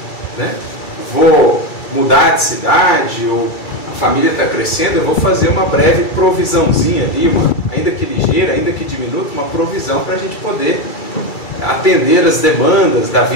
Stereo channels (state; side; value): late; right; 2.3 ms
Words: né? Vou mudar de cidade, ou a família está crescendo, eu vou fazer uma breve provisãozinha ali, ainda que ligeira, ainda que diminuta, uma provisão para a gente poder atender as demandas da